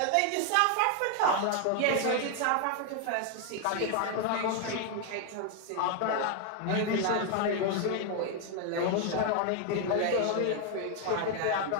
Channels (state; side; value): different; both; correlation 0.01